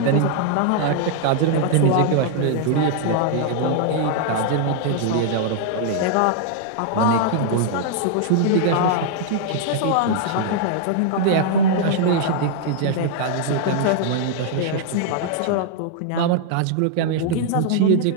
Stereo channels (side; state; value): both; different; correlation -0.01